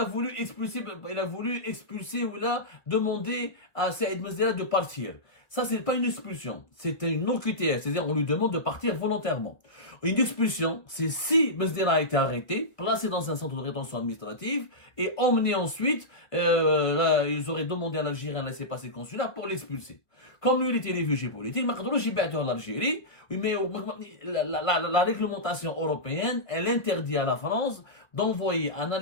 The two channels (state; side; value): late; right; 1.3 ms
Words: voulu expulser ou il a demandé à Saïd Mesdera de partir. Ça, c'est pas une expulsion. C'est une OQTF. C'est-à-dire, on lui demande de partir volontairement. Une expulsion, c'est si Mesdera a été arrêté, placé dans un centre de rétention administrative et emmené ensuite, ils auraient demandé à l'Algérien un laissez-passer consulaire pour l'expulser. Comme lui, il était réfugié politique, en Algérie, mais la réglementation européenne, elle interdit à la France d'envoyer un